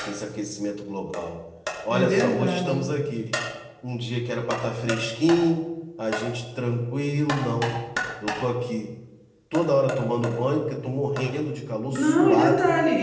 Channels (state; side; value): identical; both; correlation 1.00